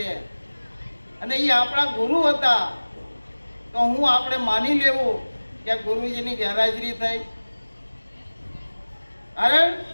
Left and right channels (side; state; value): both; inverted; correlation -1.00